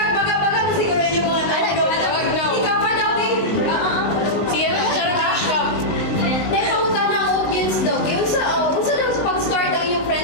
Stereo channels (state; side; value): late; right; 19 ms